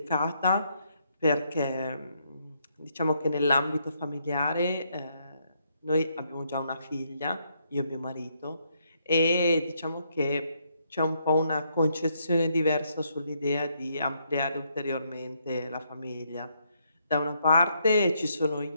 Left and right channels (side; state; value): both; inverted; correlation -0.75